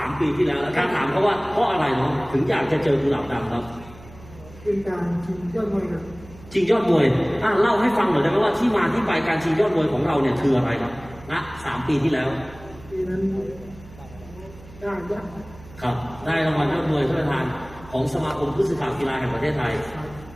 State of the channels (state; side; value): noise; right; hum, 20 dB below the sound